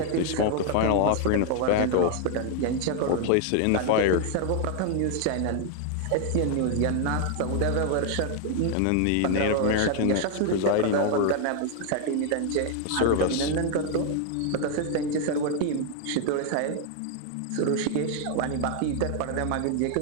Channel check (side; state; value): both; different; correlation 0.00